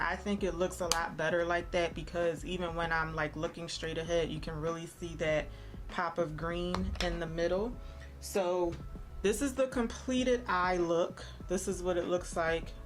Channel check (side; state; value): both; identical; correlation 1.00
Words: think it looks a lot better like that because even when I'm like looking straight ahead, you can really see that pop of green in the middle. So this is the completed eye look. This is what it looks like